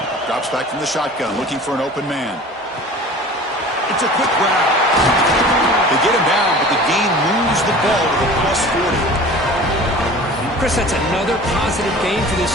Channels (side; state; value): both; normal; correlation 0.41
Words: Drops back from the shotgun, looking for an open man. It's a quick grab. They get him down, but the gain moves the ball to the plus 40. Chris, that's another positive game for